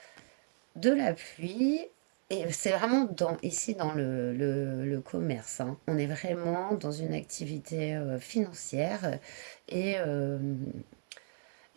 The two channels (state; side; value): silent; left; digital silence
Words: de l'appui. Et c'est vraiment ici dans le commerce, hein. On est vraiment dans une activité financière et, euh,